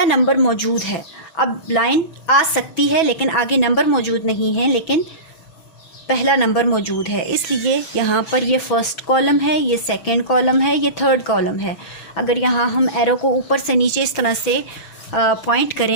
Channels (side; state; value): right; late; 6.0 ms